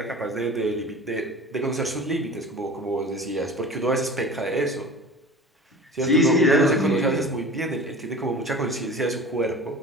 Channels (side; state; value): both; normal; correlation 0.39